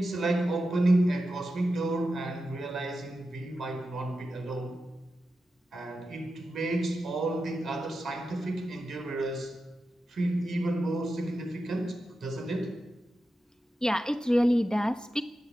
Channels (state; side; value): normal; both; correlation 0.91